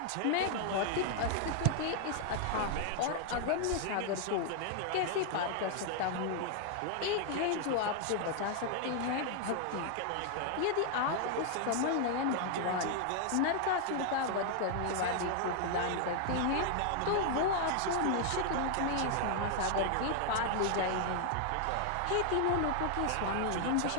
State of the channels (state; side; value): different; both; correlation 0.00